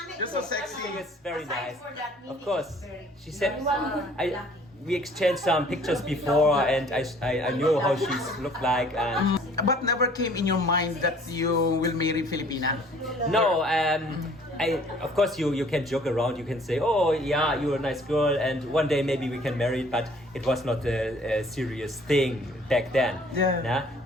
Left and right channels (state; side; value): normal; both; correlation 0.55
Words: You're so I think sexy. it's very nice. Of course, she said, we exchanged some pictures before, and I knew how she's looked like, and But never came in your mind that you will marry Filipina. no, of course you can joke around. You can say, oh yeah, you're a nice girl, and one day maybe we can marry. But it was not a serious thing back then. Yeah. Nah?